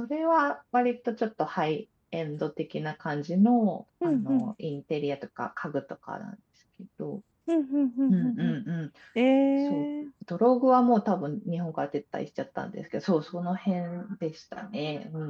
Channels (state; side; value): identical; both; correlation 1.00